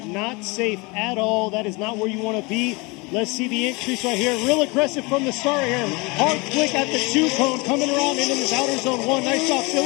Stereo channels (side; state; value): right; quieter; 26.9 dB